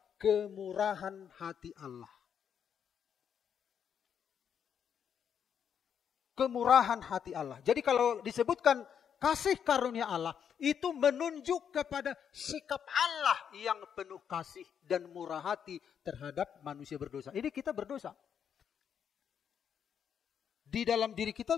kemurahan hati Allah. Kemurahan hati Allah. Jadi kalau disebutkan kasih karunia Allah, itu menunjuk kepada sikap Allah yang penuh kasih dan murah hati terhadap manusia berdosa. Ini kita berdosa. Di dalam diri kita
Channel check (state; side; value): quieter; right; 8.0 dB